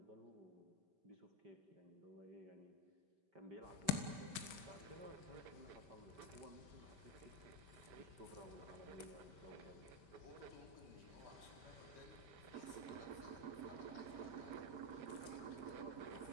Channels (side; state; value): left; late; 5.1 ms